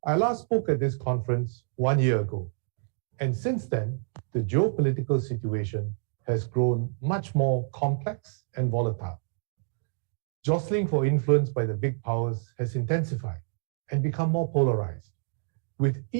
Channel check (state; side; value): silent; left; digital silence